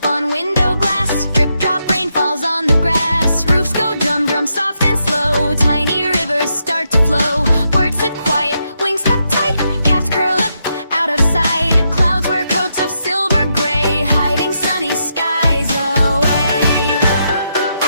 on window glass. Drip, drop, rain falls on the grass. Roofs go drum, drum, soft and slow. Tiny rivers start to flow. Birds sit quiet, wings tucked tight. Cats curl up out of sight. Clouds wear coats of silver gray, hiding sunny skies away.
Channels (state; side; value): inverted; both; correlation -0.81